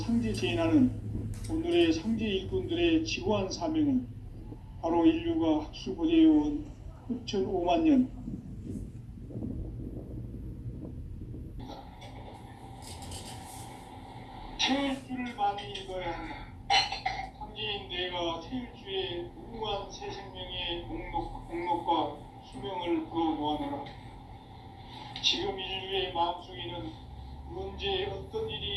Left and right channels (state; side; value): identical; both; correlation 1.00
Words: 제인하는 오늘의 상제 일꾼들의 지고한 사명은 바로 인류가 학수고대해온 후천 5만 년 태일주를 많이 읽어야 한다. 상제인 내가 태일주의 무궁한 새 생명을